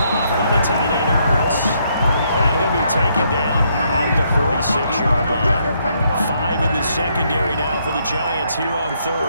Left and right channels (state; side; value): inverted; both; correlation -0.73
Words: by the tight end Ertz. And he'll be taken down at the 46-yard line. 5 in the secondary now for the Giants here on